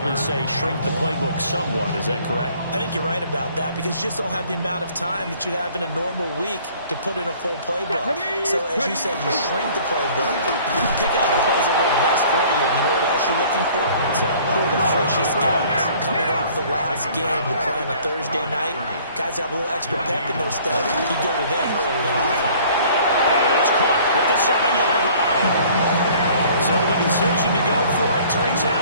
say shrink the playbook somewhat. Is that correct? I think you're right about that because you just don't have the amount of time that you have in a normal week to put in a full playbook. So as you said, you shrink the playbook, pick out the plays that work best for you. You know what else you're looking for? The freshest guys coming off the last game to play on a Thursday night. Guys have a little extra pep in their step. You go to them early on. And it's caught at the 7-yard line. So So the decision to go for it turns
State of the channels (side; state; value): both; inverted; correlation -0.54